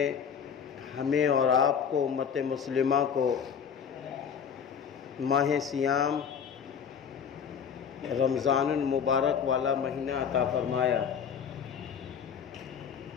ہمیں اور آپ کو، امت مسلمہ کو، ماہ سیام رمضان المبارک والا مہینہ عطا فرمایا۔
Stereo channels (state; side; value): quieter; right; 7.3 dB